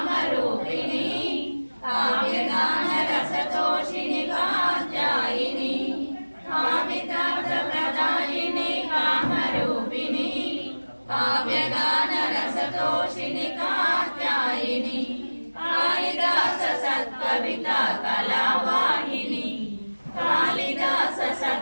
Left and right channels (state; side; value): inverted; both; correlation -1.00